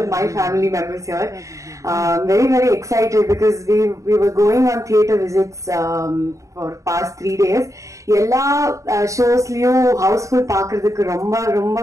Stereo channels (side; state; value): left; late; 0.15 ms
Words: my family members here. Very excited because we were going on theatre visits for past 3 days. எல்லா ஷோஸ்லயும் Housefull பாக்குறதுக்கு ரொம்ப